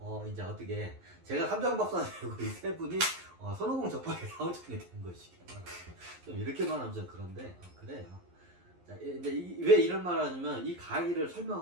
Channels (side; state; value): left; late; 11 ms